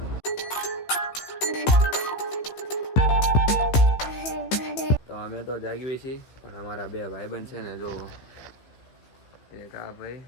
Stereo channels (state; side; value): late; right; 15 ms